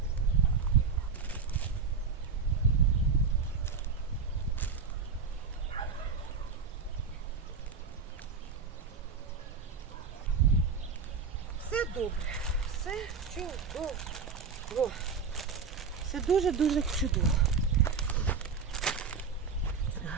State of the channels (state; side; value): quieter; left; 5.5 dB